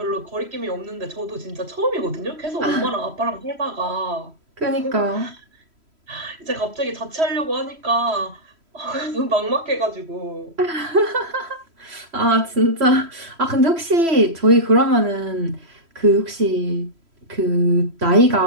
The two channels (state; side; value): late; left; 3.1 ms